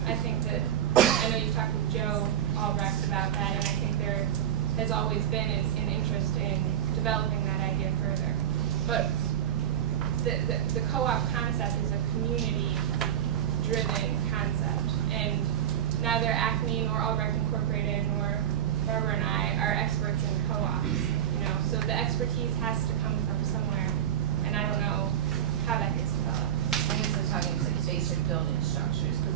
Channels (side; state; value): left; quieter; 10.4 dB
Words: I think that, I know you've talked with Joe Albrecht about that, and I think there has always been an interest in developing that idea further. But the co-op concept is a community-driven concept, and neither Acme nor Albrecht Incorporated nor Barbara and I are experts in co-ops. So the expertise has to come from somewhere, and I don't know how that gets developed. I guess I'm talking like basic building structures, because